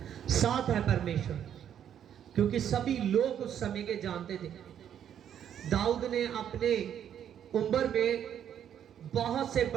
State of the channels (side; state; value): left; quieter; 9.5 dB